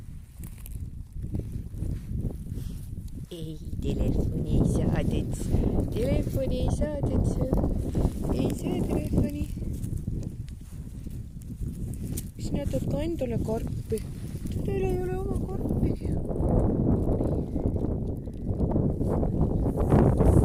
Ei, telefoni ei saadets. Telefoni ei saadets. Ei saa telefoni. Sina tood ka endale karpi. Teil ei ole oma karpi.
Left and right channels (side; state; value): both; identical; correlation 1.00